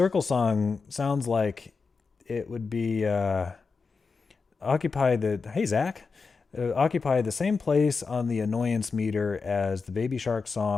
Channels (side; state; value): right; quieter; 4.8 dB